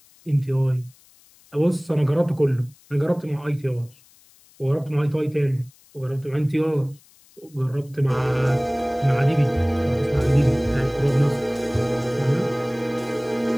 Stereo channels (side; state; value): left; noise; hiss, 29 dB below the sound